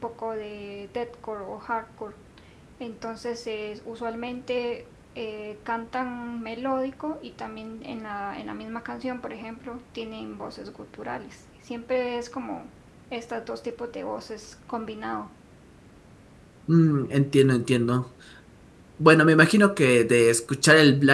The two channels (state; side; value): identical; both; correlation 1.00